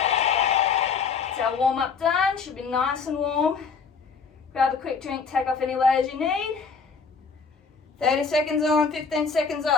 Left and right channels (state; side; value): quieter; right; 5.4 dB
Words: It's our warm up done, should be nice and warm. Grab a quick drink, take off any layers you need. 30 seconds on, 15 seconds